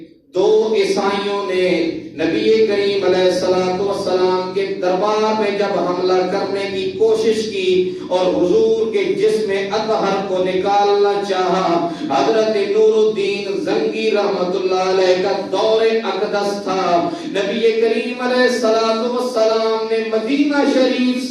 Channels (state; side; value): identical; both; correlation 1.00